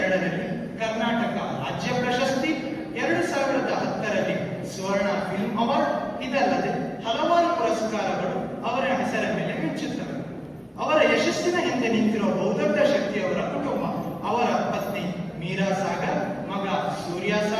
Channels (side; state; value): both; identical; correlation 1.00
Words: ಕರ್ನಾಟಕ ರಾಜ್ಯ ಪ್ರಶಸ್ತಿ, 2010ರಲ್ಲಿ ಸ್ವರ್ಣ ಫಿಲ್ಮ್ ಅವಾರ್ಡ್, ಇದಲ್ಲದೆ ಹಲವಾರು ಪುರಸ್ಕಾರಗಳು ಅವರ ಹೆಸರ ಮೇಲೆ ಮಿಂಚುತ್ತವೆ. ಅವರ ಯಶಸ್ಸಿನ ಹಿಂದೆ ನಿಂತಿರುವ ಬಹುದೊಡ್ಡ ಶಕ್ತಿಯವರ ಕುಟುಂಬ. ಅವರ ಪತ್ನಿ ಮೀರಾ ಸಾಗರ್, ಮಗ ಸೂರ್ಯ